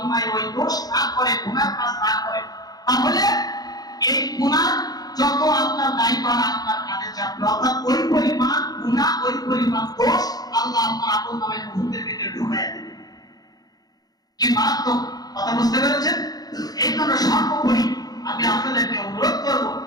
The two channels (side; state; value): right; late; 0.19 ms